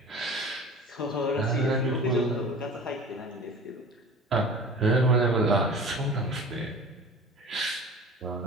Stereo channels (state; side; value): normal; both; correlation 0.39